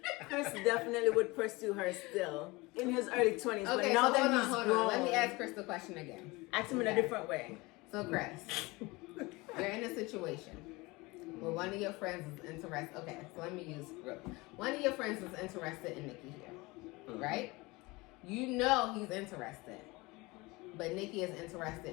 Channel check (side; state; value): right; quieter; 23.3 dB